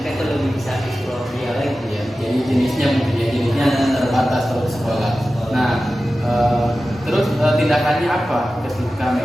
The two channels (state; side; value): normal; both; correlation 0.94